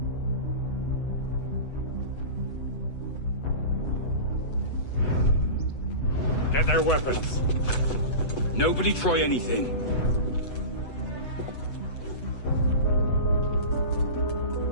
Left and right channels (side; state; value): right; late; 8.0 ms